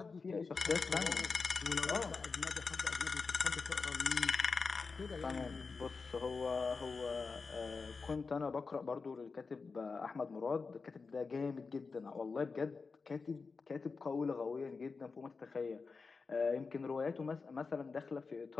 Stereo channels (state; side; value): quieter; right; 4.6 dB